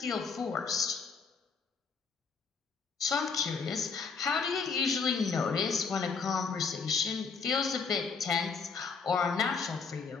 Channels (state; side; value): quieter; right; 5.1 dB